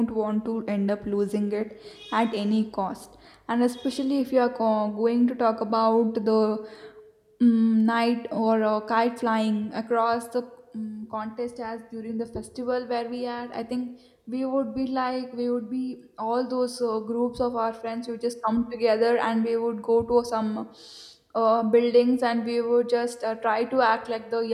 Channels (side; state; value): both; identical; correlation 1.00